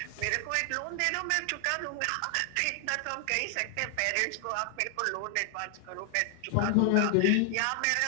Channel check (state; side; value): different; both; correlation 0.00